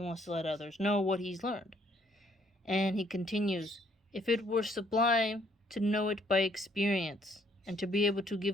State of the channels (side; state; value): both; normal; correlation 0.66